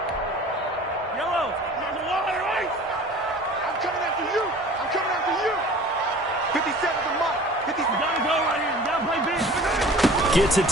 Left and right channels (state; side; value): normal; both; correlation 0.44